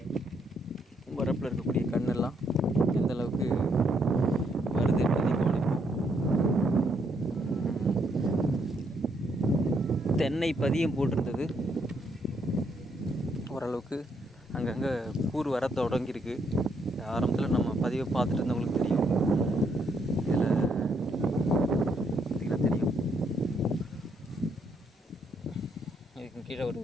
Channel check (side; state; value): both; normal; correlation 0.74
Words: வரப்பில் இருக்கக்கூடிய கண்ணெல்லாம் எந்த அளவுக்கு தென்னை பதியம் போட்டிருந்தது. ஓரளவுக்கு அங்கங்கே கூறு வர தொடங்கியிருக்கு. ஆரம்பத்தில் நம்ம பதிவை பார்த்துட்டு இருந்தவங்களுக்கு தெரியும். இதில் பார்த்திங்கன்னா தெரியும், இதுக்கு கீழே ஒரு